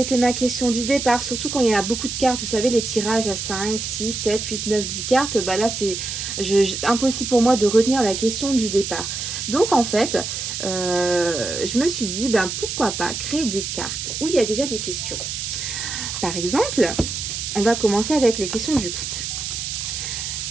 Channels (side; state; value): right; noise; hiss, 4 dB below the sound